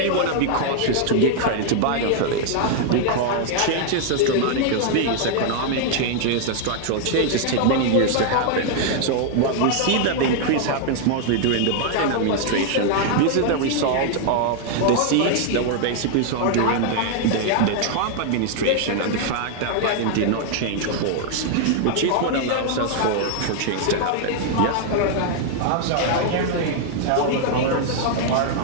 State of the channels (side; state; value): both; different; correlation 0.00